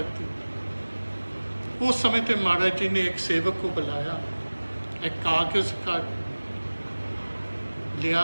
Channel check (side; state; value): both; inverted; correlation -1.00